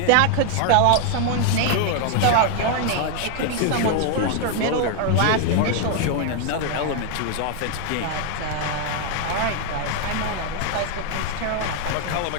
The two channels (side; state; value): both; different; correlation 0.00